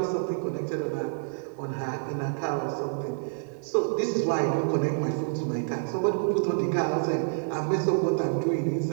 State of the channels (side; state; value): left; silent; 57 dB below the other